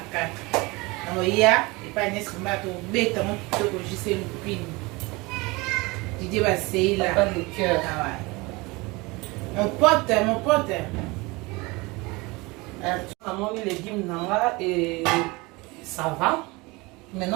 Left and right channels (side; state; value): left; quieter; 24.2 dB